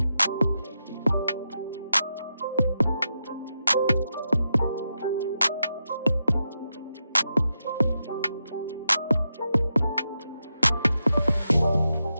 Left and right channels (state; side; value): inverted; both; correlation -0.87